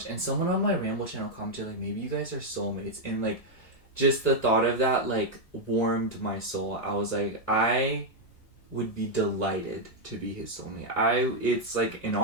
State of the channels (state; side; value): late; right; 1.6 ms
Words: And someone on my ramble channel commented like, maybe you guys are soulmates, and like just the thought of that like warmed my soul. I was like, I would be delighted to be his soulmate. It's like an